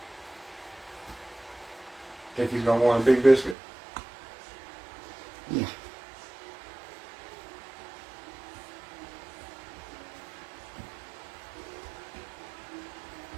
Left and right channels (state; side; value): drops out; left; at 3.6 s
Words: Think he's going to want a big biscuit? Yeah.